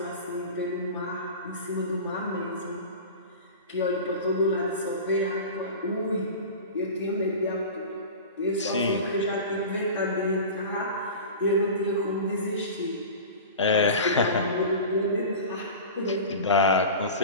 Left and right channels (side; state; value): both; inverted; correlation -0.32